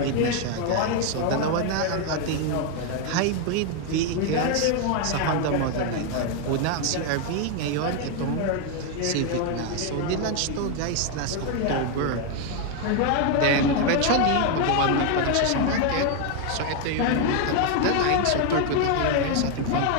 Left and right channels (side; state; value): both; different; correlation 0.01